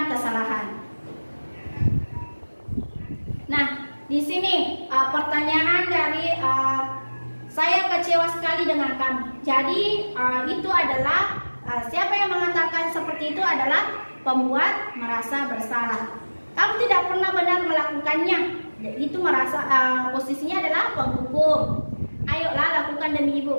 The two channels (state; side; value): inverted; both; correlation -1.00